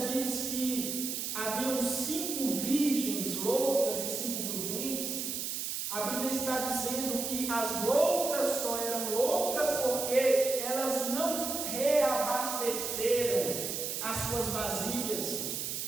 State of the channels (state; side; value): noise; right; hiss, 3 dB below the sound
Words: que haviam 5 virgens loucas e 5 prudentes, a Bíblia está dizendo que as loucas só eram loucas porque elas não reabasteceram as suas vasilhas,